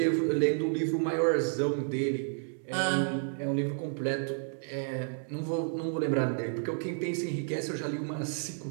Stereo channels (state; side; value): silent; left; digital silence